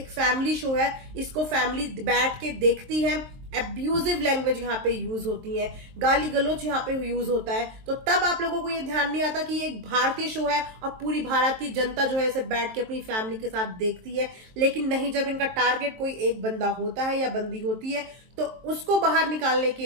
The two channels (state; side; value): late; left; 23 ms